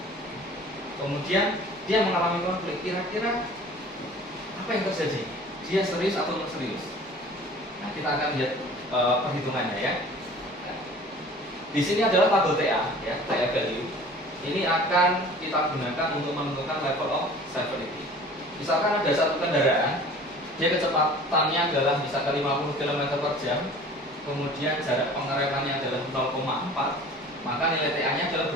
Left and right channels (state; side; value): normal; both; correlation 0.45